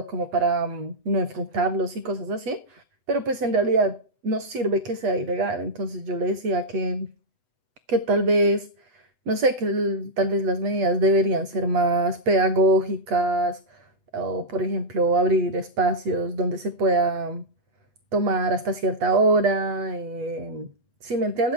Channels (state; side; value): late; left; 8.0 ms